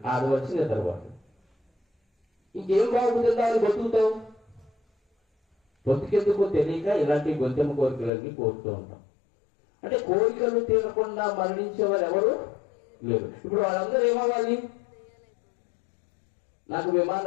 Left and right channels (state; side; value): drops out; right; at 8.1 s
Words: 6 వచ్చి నిద్రపోతాడు. ఇంకేం బాగుంటుందా అని బతుకుతావు. బతుకెందుకో తెలియక ఇలాంటి గొంతెమ్మ కోరికలన్నీ కోరుతూ ఉంటాం. అంటే కోరికలు తీరకుండా మరణించేవారు ఎవరు లేరు. ఇప్పుడు వాళ్ళందరూ ఏమవ్వాలి? నాకు